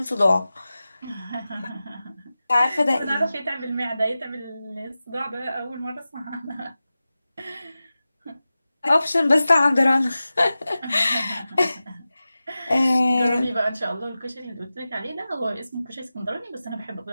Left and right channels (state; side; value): inverted; both; correlation -0.95